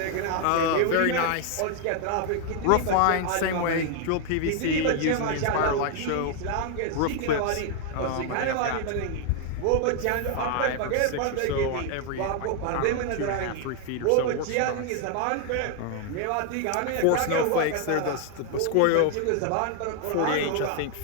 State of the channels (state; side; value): different; both; correlation 0.00